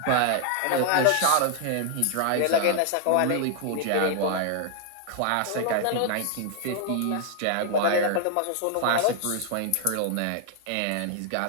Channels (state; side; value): different; both; correlation 0.00